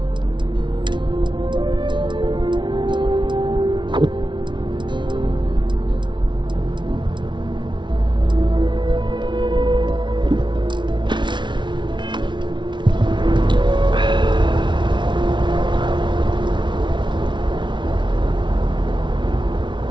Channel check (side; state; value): left; late; 0.23 ms